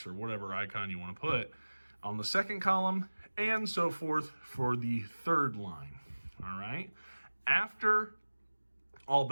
or whatever icon you want to put on the second column, and so forth for the third line. All right. After all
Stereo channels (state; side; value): inverted; both; correlation -1.00